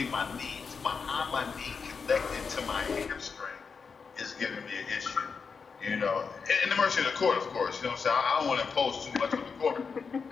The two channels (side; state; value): right; quieter; 5.4 dB